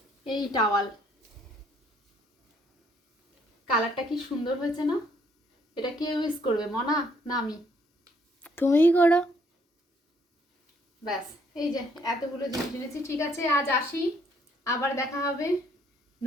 এই টাওয়াল, কালারটা কি সুন্দর হয়েছে না? এটা কে ইউজ করবে, মনা না আমি? তুমিই করো। ব্যাস, এই যে এতগুলো জিনিস এনেছি। ঠিক আছে, আজ আসি, আবার দেখা হবে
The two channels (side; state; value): both; normal; correlation 0.67